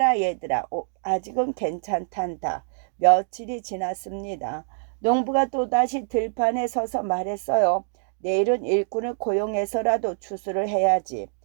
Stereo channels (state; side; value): silent; left; digital silence